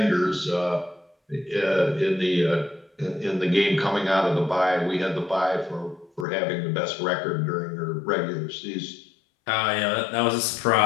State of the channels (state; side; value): drops out; right; at 6.2 s